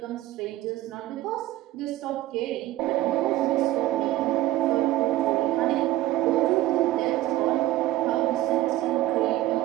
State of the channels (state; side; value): quieter; left; 15.6 dB